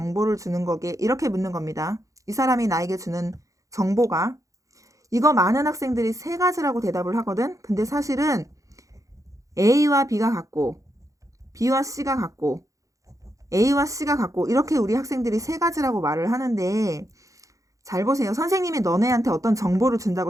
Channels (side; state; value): left; late; 0.16 ms